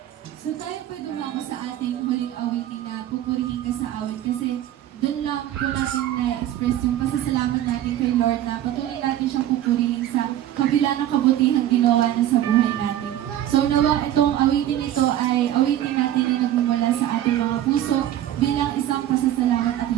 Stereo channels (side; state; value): left; quieter; 12.3 dB